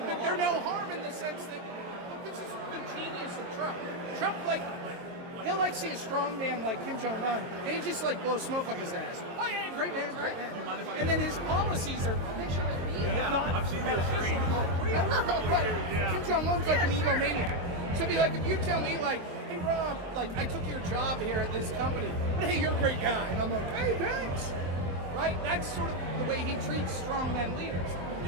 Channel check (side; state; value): left; late; 22 ms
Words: but they're no harm in the sense that this is the genius of Trump. Trump, like, he'll like see a strong man like Kim Jong-un, and he just like blow smoke up his ass. Oh yeah, great man, great man. And then his policies are. I've seen those screens. Kim Jong-un's like an egomaniac. So it'd be like if you tell me like, hey Rob, like I took your job here at this company, but hey, you're a great guy, and I'm like, hey, thanks. Right? That's sort of the way he treats strongman leaders.